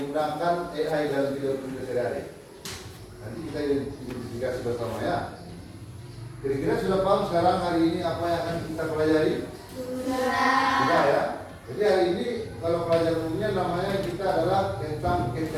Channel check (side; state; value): both; identical; correlation 1.00